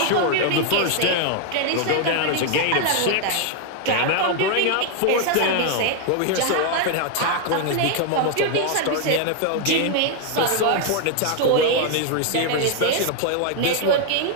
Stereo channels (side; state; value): both; different; correlation 0.00